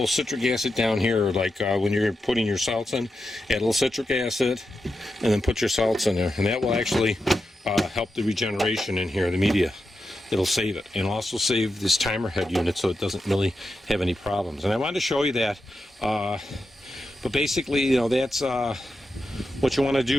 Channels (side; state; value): both; normal; correlation 0.88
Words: citric acid down here, like when you're putting your salts in, add a little citric acid, and then put your salts in there, and that will actually help the regeneration in here, the media. It'll save it, and also save this timer head unit so it doesn't really have any problems. And I wanted to show you that, but basically, that's what you want to